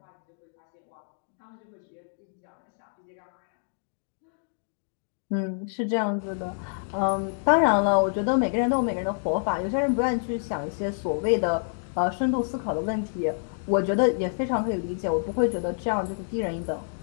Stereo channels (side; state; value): right; silent; digital silence